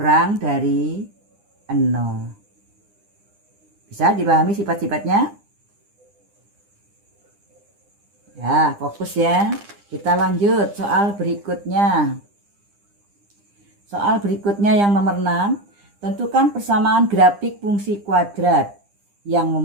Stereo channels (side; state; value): left; late; 9.9 ms